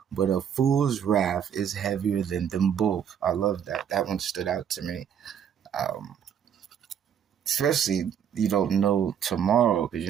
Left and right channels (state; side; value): quieter; left; 8.5 dB